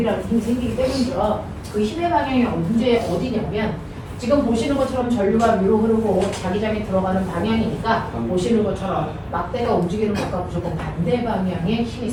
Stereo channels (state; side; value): identical; both; correlation 1.00